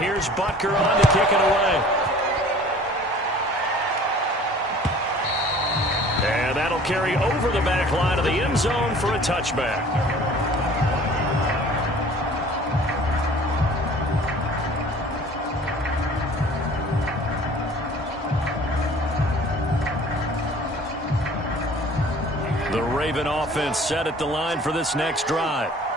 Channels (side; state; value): both; normal; correlation 0.48